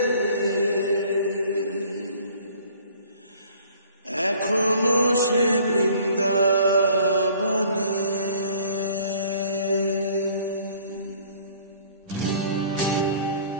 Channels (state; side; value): inverted; both; correlation -0.54